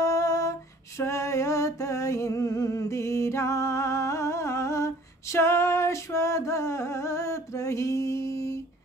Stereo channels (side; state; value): both; normal; correlation 0.53